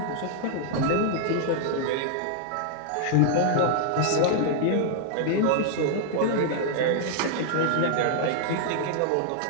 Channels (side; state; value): both; different; correlation -0.01